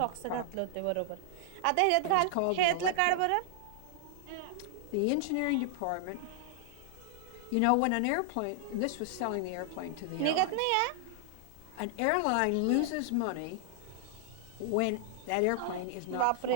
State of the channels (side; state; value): both; different; correlation 0.00